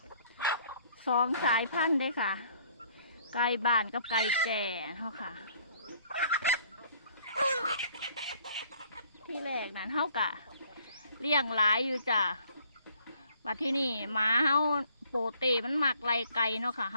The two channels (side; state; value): both; inverted; correlation -0.61